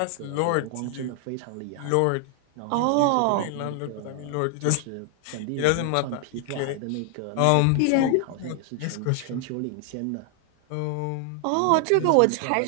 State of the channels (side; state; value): both; different; correlation 0.00